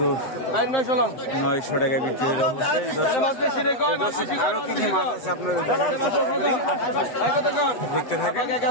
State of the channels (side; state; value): right; late; 7.9 ms